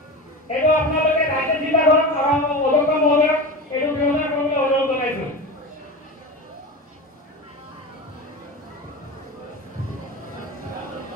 এইটো আপোনালোকে ৰাইজে চিন্তা কৰক আৰু অধ্যক্ষ মহোদয়ক এইটো ব্যৱস্থা কৰিবলৈ অনুৰোধ জনাইছোঁ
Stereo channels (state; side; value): normal; both; correlation 0.27